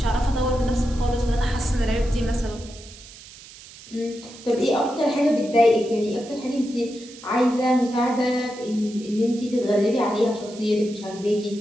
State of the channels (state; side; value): noise; right; hiss, 19 dB below the sound